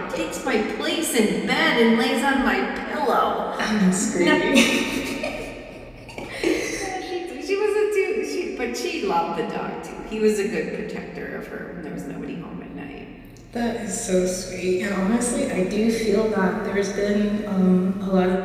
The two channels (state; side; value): identical; both; correlation 1.00